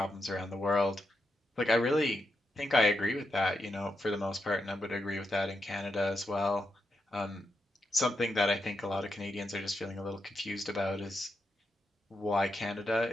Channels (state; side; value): normal; both; correlation 0.84